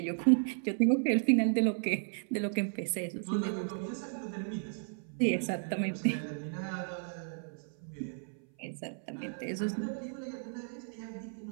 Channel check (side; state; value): left; silent; 55 dB below the other